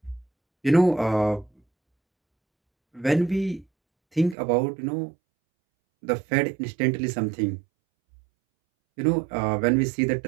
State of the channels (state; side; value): drops out; left; at 4.4 s